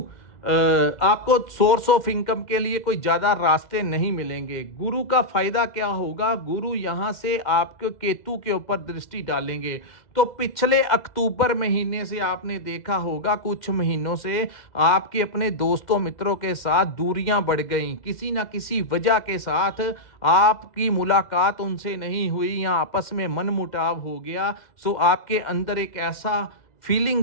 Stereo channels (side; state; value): right; late; 2.1 ms